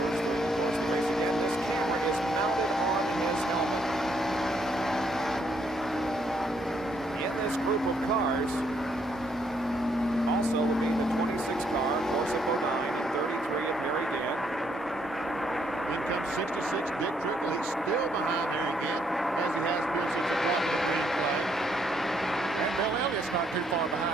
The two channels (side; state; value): both; normal; correlation 0.72